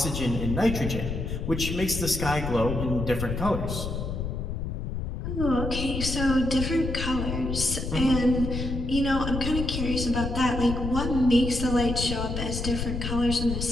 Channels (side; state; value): left; noise; rumble, 4 dB below the sound